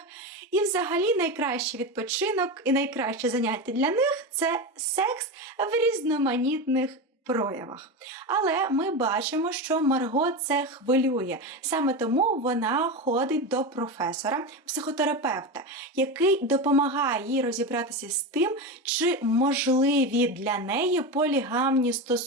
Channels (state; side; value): normal; both; correlation 0.19